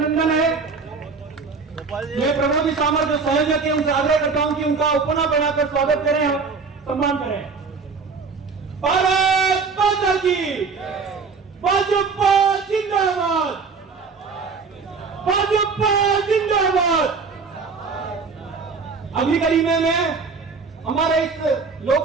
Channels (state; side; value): quieter; left; 4.9 dB